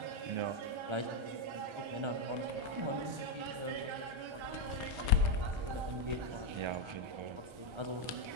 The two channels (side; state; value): left; late; 1.3 ms